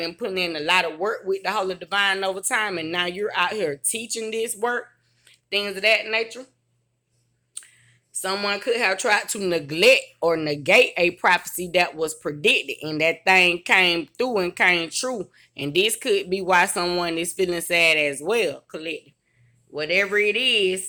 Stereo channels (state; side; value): identical; both; correlation 1.00